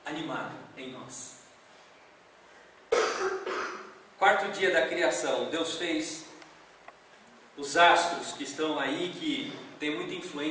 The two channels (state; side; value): identical; both; correlation 1.00